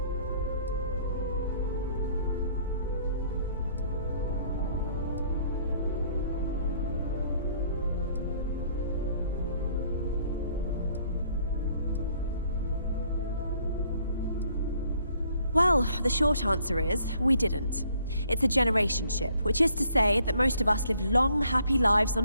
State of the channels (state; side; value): inverted; both; correlation -0.63